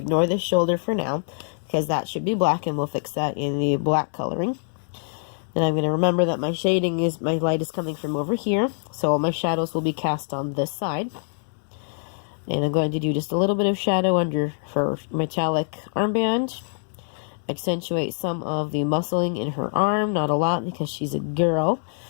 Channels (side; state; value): right; silent; digital silence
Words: this shoulder for now, because that should be black, and we'll fix that in the black coloring. Then I'm going to remember that my shading is, my light is coming from over here, so all my shadows will be cast on this side. And I'm going to do just a little bit of shadow under her metallic armband. Accentuate some of the muscling in her arm, not a lot because she's a girl,